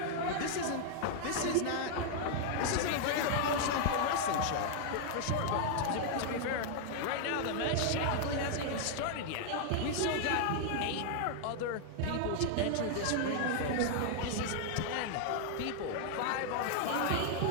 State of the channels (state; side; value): different; both; correlation -0.01